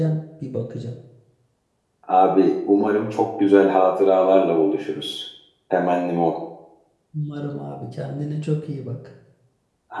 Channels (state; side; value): identical; both; correlation 1.00